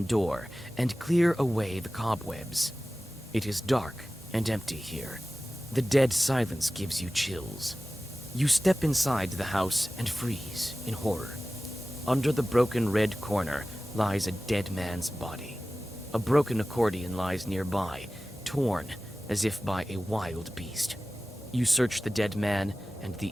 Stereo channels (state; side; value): normal; both; correlation 0.96